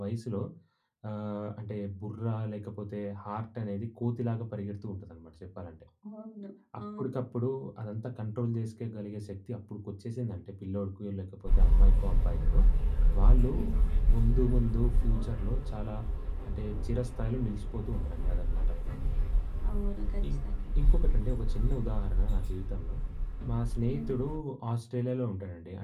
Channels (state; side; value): identical; both; correlation 1.00